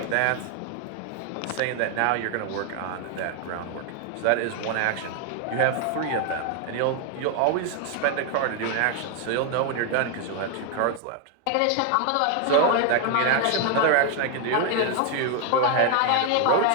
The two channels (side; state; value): both; different; correlation 0.00